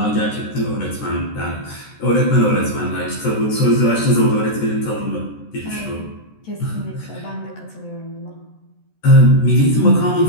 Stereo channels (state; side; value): late; right; 14 ms